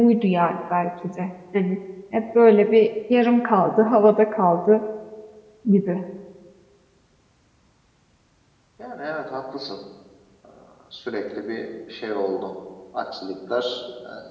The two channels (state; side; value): identical; both; correlation 1.00